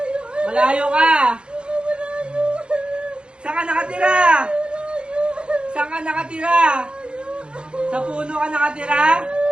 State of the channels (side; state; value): left; late; 0.055 ms